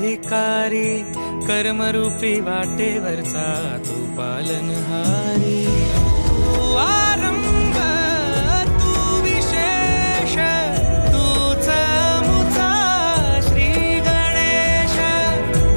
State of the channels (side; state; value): both; inverted; correlation -1.00